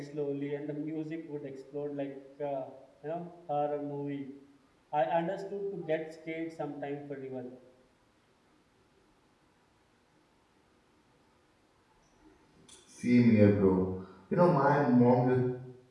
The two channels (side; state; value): both; identical; correlation 1.00